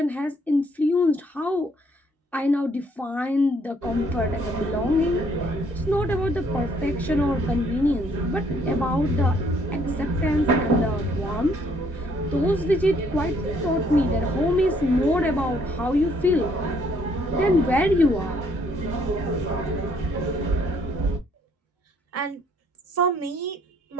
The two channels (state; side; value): normal; both; correlation 0.65